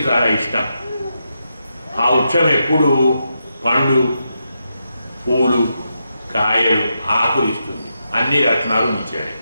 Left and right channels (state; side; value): inverted; both; correlation -0.85